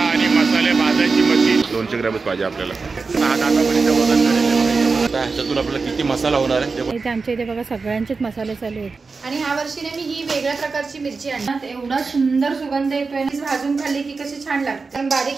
मसाले भाजायची मशीन 200 ग्रॅमच पाहिजे आपल्याला. वजन ह्याच्यातून आपल्याला किती मसाला होणार आहे ते आमच्या इथे बघा सगळ्यांचेच मसाले चालू आहेत. आणि ह्या वर्षीने मी ही वेगळ्या प्रकारची मिरची आणणार. एवढा सुंदर सुगंध येतोय. भाजून खाल्ली की कशी छान लागते. कारण बारीक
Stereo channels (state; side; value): quieter; left; 4.4 dB